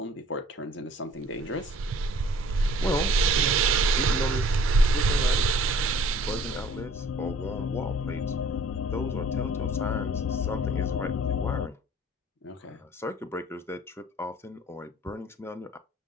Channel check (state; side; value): normal; both; correlation 0.53